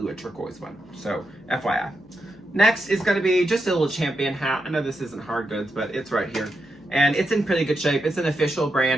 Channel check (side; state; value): left; noise; hum, 27 dB below the sound